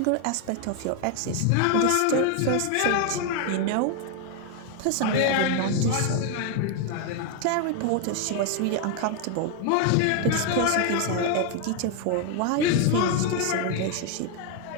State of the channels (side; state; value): both; different; correlation 0.01